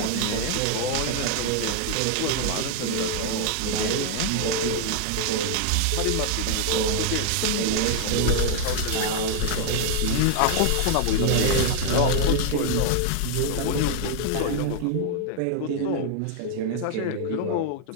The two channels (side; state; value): both; different; correlation 0.00